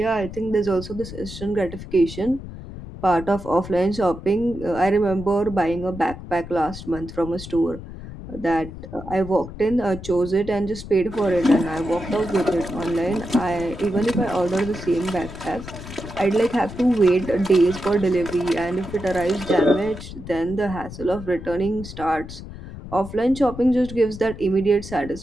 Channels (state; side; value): noise; left; rumble, 12 dB below the sound